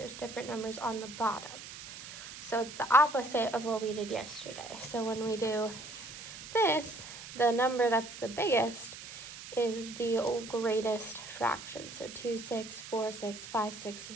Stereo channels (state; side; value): noise; right; hiss, 12 dB below the sound